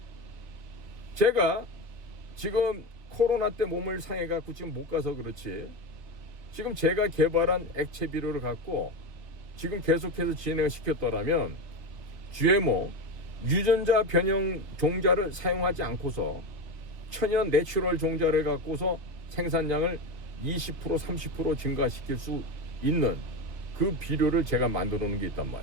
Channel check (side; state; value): left; late; 2.7 ms